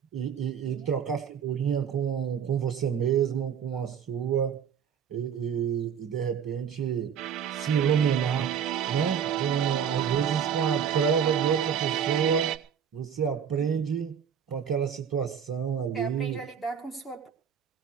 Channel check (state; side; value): quieter; left; 8.0 dB